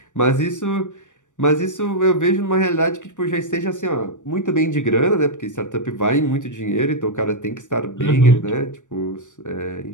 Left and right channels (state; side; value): late; right; 0.86 ms